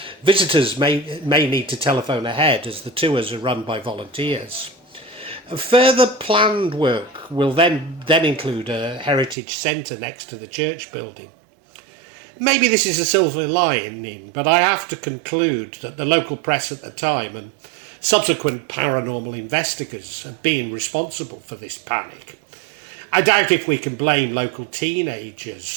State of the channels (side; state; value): left; drops out; at 9.3 s